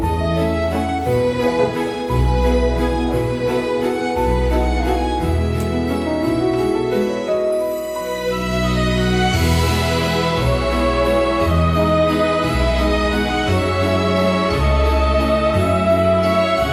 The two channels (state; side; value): identical; both; correlation 1.00